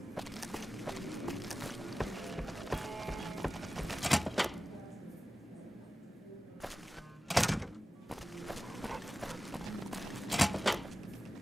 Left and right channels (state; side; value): normal; both; correlation 0.95